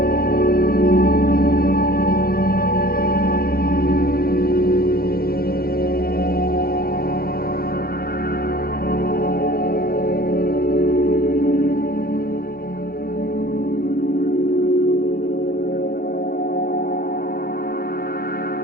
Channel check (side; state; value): right; late; 0.44 ms